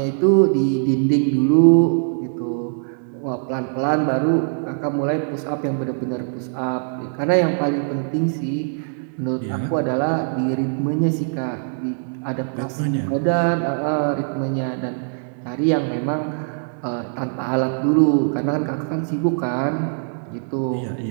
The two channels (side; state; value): left; silent; 64 dB below the other